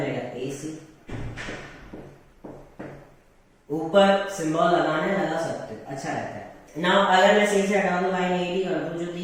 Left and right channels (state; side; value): identical; both; correlation 1.00